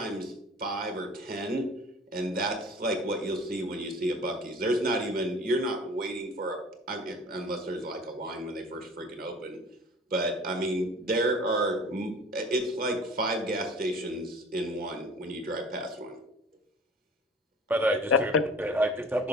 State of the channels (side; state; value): both; normal; correlation 0.45